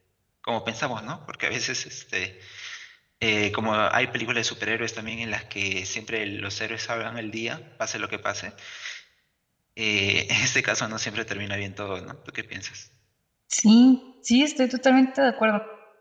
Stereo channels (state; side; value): identical; both; correlation 1.00